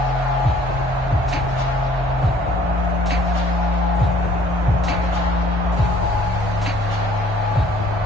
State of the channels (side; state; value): both; normal; correlation 0.57